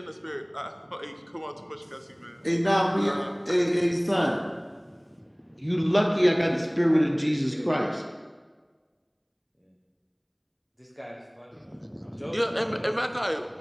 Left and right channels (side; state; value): both; identical; correlation 1.00